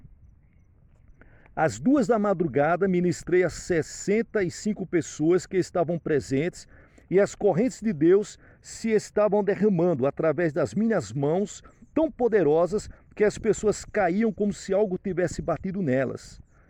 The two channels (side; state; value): both; identical; correlation 1.00